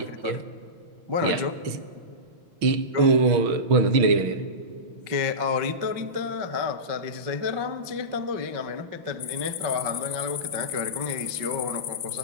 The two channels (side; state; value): left; late; 5.7 ms